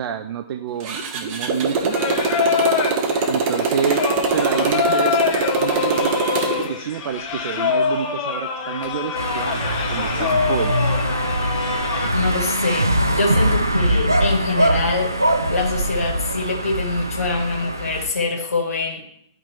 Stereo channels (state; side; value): inverted; both; correlation -0.53